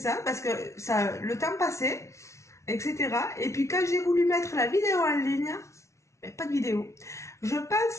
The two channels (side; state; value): right; late; 0.14 ms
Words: parce que le temps passait, etc. Et puis quand j'ai voulu mettre la vidéo en ligne, pas de vidéo. Je